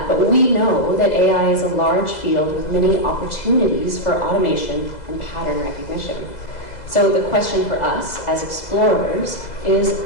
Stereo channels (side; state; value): right; late; 2.0 ms